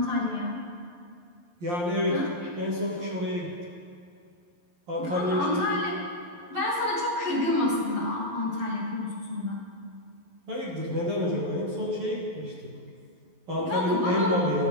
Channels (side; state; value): left; late; 11 ms